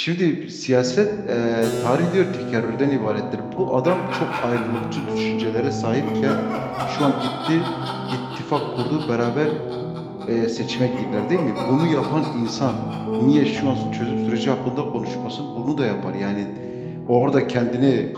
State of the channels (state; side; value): identical; both; correlation 1.00